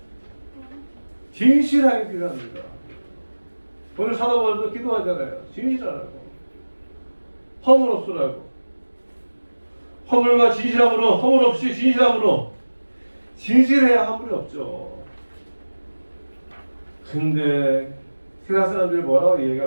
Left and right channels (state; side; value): inverted; both; correlation -1.00